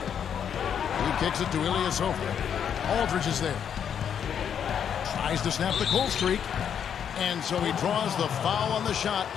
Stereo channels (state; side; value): quieter; right; 8.3 dB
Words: He kicks it to Ilyasova. Aldridge is there. Tries to snap the cold streak. And so he draws the foul on the shot.